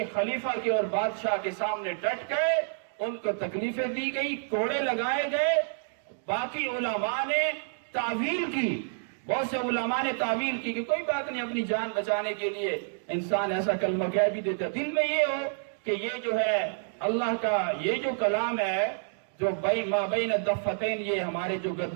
خلیفہ کے اور بادشاہ کے سامنے ڈٹ گئے، ان کو تکلیفیں دی گئی، کوڑے لگائے گئے۔ باقی علماء نے تعویل کی، بہت سے علماء نے تعویل کی کہ کوئی بات نہیں، اپنی جان بچانے کے لیے انسان ایسا کلمہ کہہ بھی دیتا، دل میں یہ ہو کہ یہ جو ہے اللہ کا یہ جو کلام ہے جو ما بین الدفتین، یہ ہمارے جو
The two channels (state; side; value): silent; left; digital silence